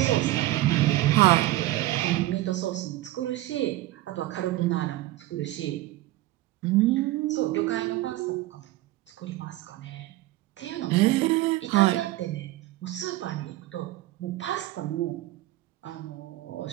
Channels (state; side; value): quieter; left; 16.7 dB